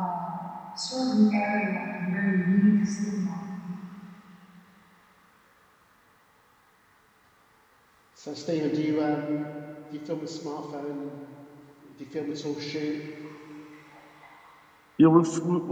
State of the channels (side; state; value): both; identical; correlation 1.00